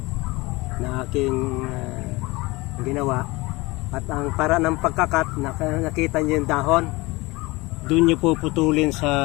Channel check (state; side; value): quieter; right; 22.8 dB